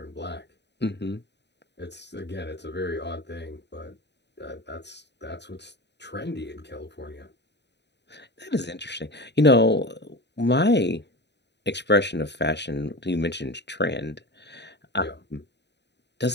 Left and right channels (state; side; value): late; right; 0.50 ms